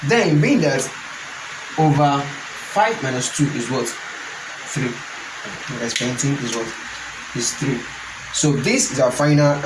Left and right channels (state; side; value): identical; both; correlation 1.00